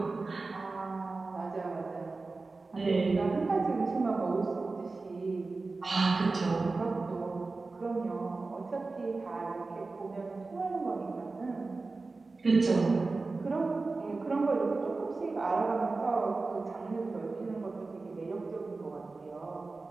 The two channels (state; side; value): quieter; left; 3.7 dB